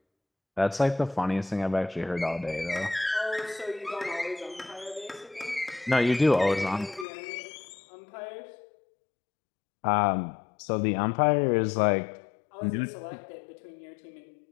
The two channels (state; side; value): drops out; right; at 7.1 s